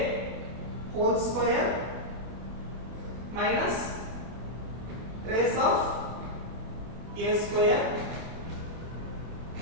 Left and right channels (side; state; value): left; late; 24 ms